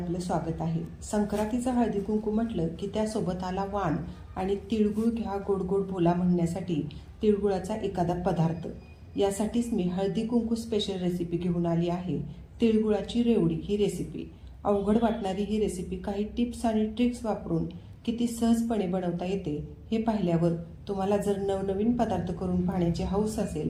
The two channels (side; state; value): both; identical; correlation 1.00